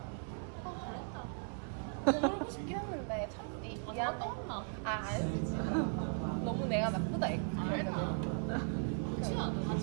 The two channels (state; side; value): silent; left; 53 dB below the other